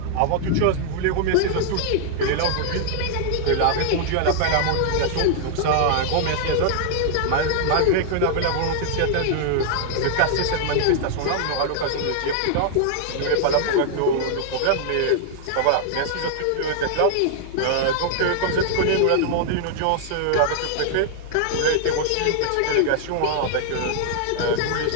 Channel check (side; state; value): both; different; correlation -0.01